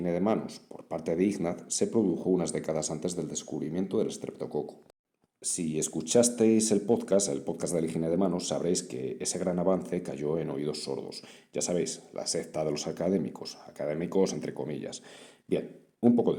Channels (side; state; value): both; identical; correlation 1.00